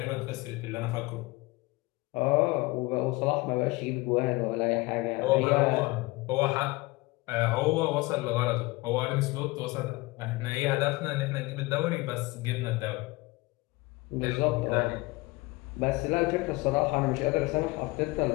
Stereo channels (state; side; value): quieter; right; 22.7 dB